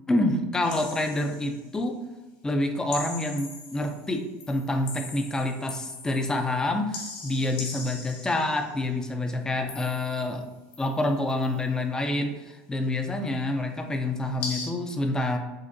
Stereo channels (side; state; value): both; normal; correlation 0.64